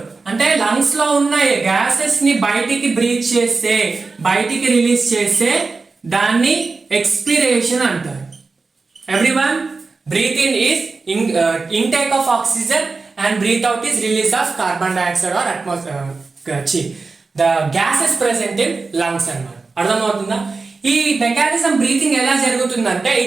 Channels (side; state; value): left; quieter; 4.1 dB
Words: అంటే లంగ్స్ లో ఉన్న గ్యాసెస్ ని బయటికి బ్రీత్ చేస్తే, బయటికి రిలీజ్ చేస్తే దాన్ని ఎక్స్పిరేషన్ అంటారు. Everyone, breath in is intake of oxygen and breath out is release of carbon dioxide or the gases present in lungs అన్నమాట. అర్థమవుతుందా, ఈ మెకానిజం బ్రీతింగ్ ఎలా జరుగుతుందంటే